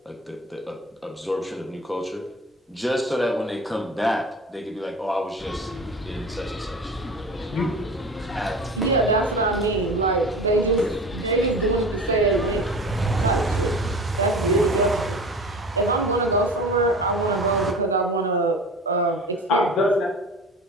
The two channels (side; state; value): both; normal; correlation 0.36